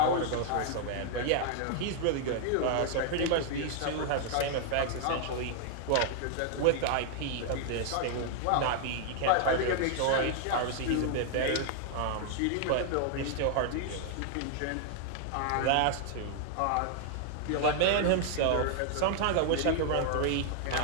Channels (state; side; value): different; both; correlation 0.00